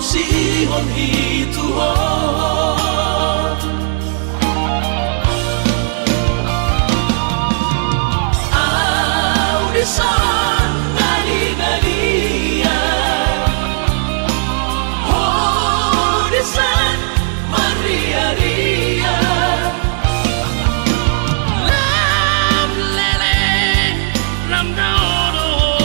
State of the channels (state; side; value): silent; left; 69 dB below the other